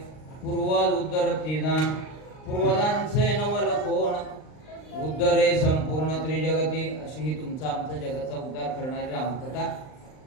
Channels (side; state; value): right; late; 39 ms